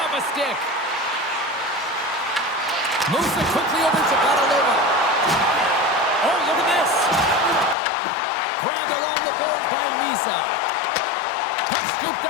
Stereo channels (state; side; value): drops out; right; at 7.8 s